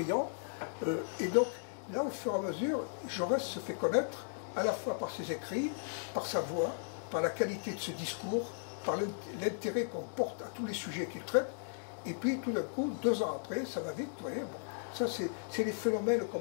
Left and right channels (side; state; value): right; silent; digital silence